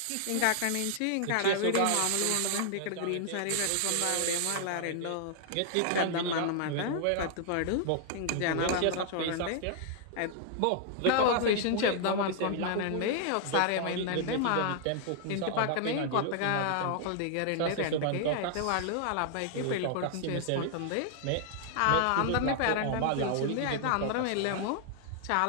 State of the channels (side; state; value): both; different; correlation 0.00